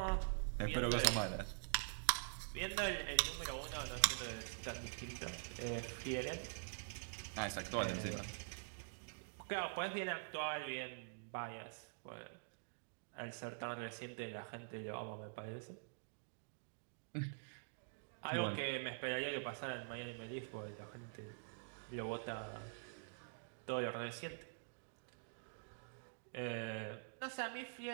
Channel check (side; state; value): left; silent; digital silence